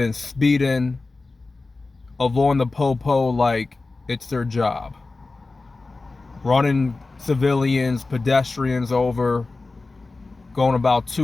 speeding, avoiding the popo like it's their job. Running civilians, pedestrians over, going about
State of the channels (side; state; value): right; quieter; 3.6 dB